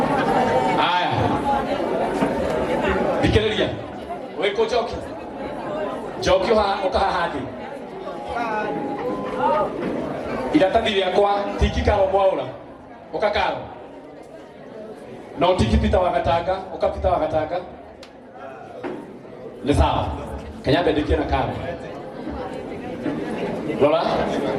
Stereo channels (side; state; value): both; identical; correlation 1.00